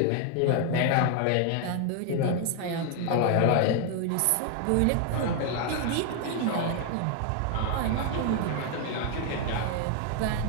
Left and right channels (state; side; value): different; both; correlation 0.01